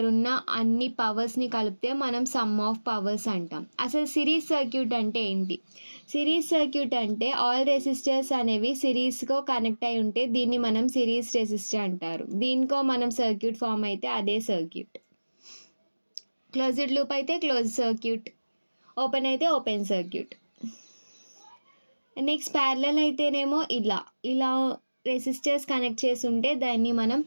ఉన్న అన్ని పవర్స్ని కలిపితే మనం some of powers అంటాం. అసలు series circuit అంటే ఏంటి? Series circuit అంటే ఆల్ రెసిస్టర్స్ అనేవి సిరీస్గా కనెక్ట్ అయి ఉంటే దీన్ని మనం సిరీస్ రెసిస్టర్ అంటారు. దీనికో మనం సర్క్యూట్ ఫామ్ అయితే అదే సర్క్యూట్. క్లోజ్డ్ లూప్ అయితే క్లోజ్ సర్క్యూట్, ఓపెన్ అయితే ఓపెన్ సర్క్యూట్. నెక్స్ట్ ప్యారలల్ అయితేనేమో ఇలా రెసిస్టర్స్ కనెక్ట్ చేసి ఉంటే దాన్ని మనం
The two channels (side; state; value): both; inverted; correlation -1.00